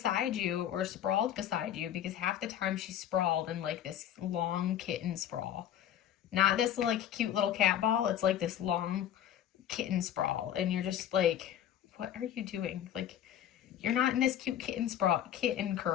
you or sprawled beside you, because half the time she's sprawled in like this long kitten sprawl. Not this like cute little cat ball, it's like this long kitten sprawl. And you're just like, what are you doing? Like, you're not in this cute kitten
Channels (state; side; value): quieter; right; 10.6 dB